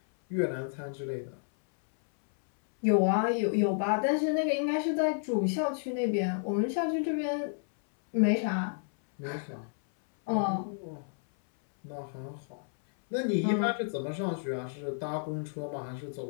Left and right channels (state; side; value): silent; right; 57 dB below the other